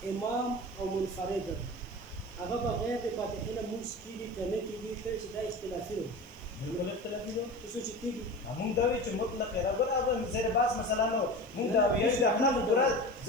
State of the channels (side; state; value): right; noise; hiss, 28 dB below the sound